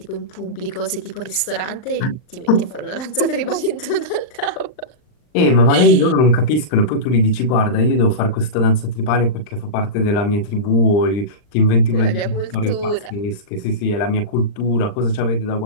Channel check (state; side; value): late; right; 39 ms